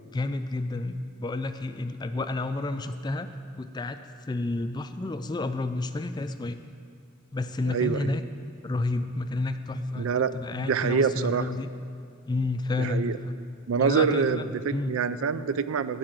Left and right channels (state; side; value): normal; both; correlation 0.34